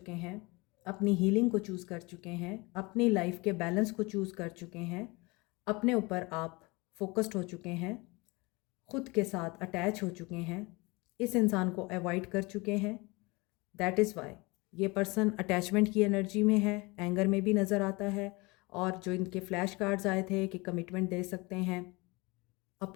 हैं, अपनी हीलिंग को चूज़ कर चुके हैं, अपनी लाइफ के बैलेंस को चूज़ कर चुके हैं, अपने ऊपर आप फोकस्ड हो चुके हैं, ख़ुद के साथ अटैच हो चुके हैं, इस इंसान को अवॉइड कर चुके हैं। दैट इज़ वाई ये पर्सन अटैचमेंट की एनर्जी में है, एंगर में भी नज़र आता है। और जो इनके फ्लैश कार्ड्स आए थे कि कमिटमेंट दे सकते हैं,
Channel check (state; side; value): quieter; right; 25.1 dB